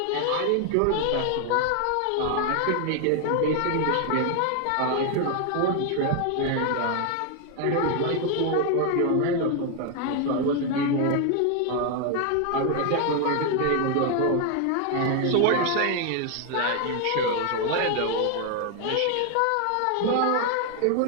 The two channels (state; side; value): different; both; correlation 0.00